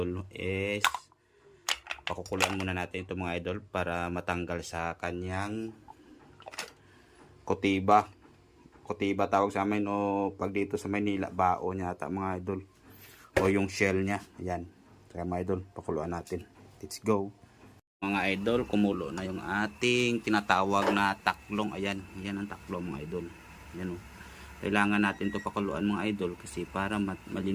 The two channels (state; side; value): identical; both; correlation 1.00